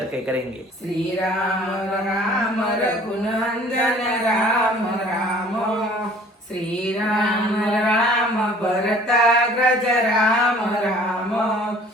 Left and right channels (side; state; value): both; normal; correlation 0.51